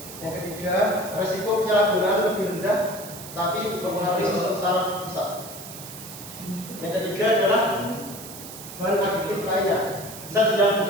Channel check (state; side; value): noise; right; hiss, 13 dB below the sound